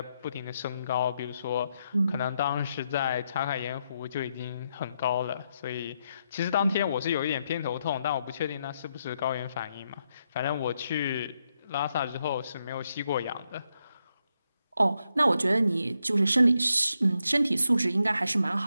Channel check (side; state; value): both; inverted; correlation -0.82